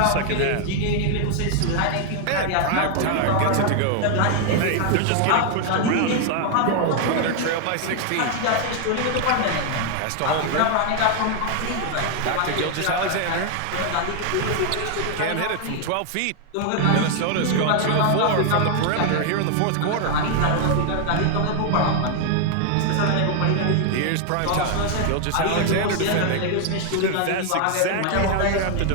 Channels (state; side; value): different; both; correlation 0.00